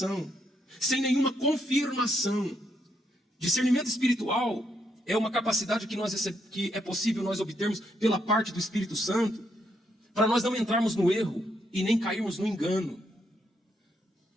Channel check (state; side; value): normal; both; correlation 0.76